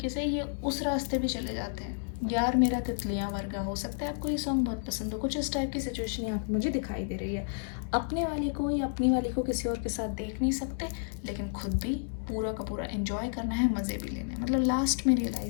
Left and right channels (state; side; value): silent; right; 57 dB below the other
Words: से ये उस रास्ते भी चले जाते हैं। यार मेरा तितलियाँ वर्गा, हो सकता है आपको ये सॉन्ग बहुत पसंद हो। कुछ इस टाइप की सिचुएशन यहाँ पे मुझे दिखाई दे रही है। अपने वाले को या अपनी वाली को किसी और के साथ देख नहीं सकते, लेकिन खुद भी पूरा का पूरा एंजॉय करना है, मज़े भी लेने हैं, मतलब लास्ट में